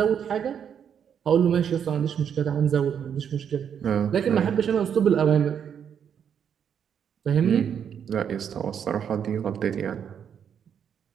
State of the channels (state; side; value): quieter; left; 8.1 dB